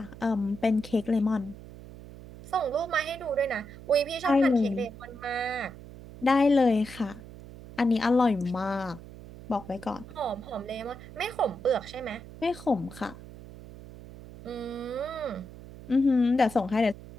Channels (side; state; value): right; noise; hum, 16 dB below the sound